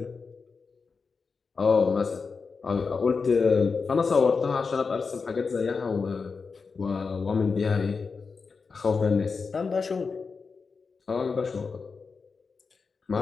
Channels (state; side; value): quieter; right; 4.9 dB